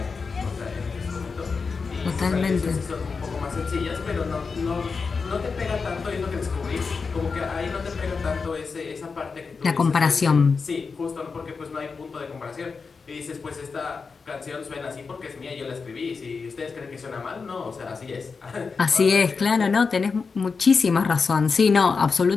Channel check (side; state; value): right; quieter; 4.9 dB